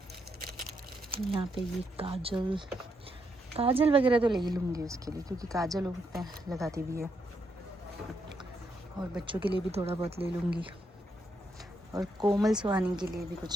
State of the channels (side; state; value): both; normal; correlation 0.79